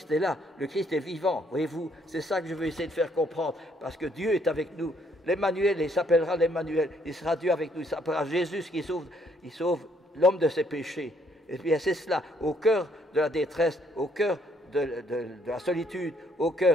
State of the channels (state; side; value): normal; both; correlation 0.68